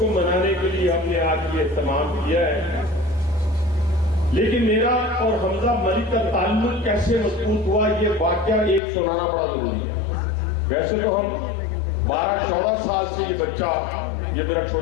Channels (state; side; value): drops out; right; at 8.8 s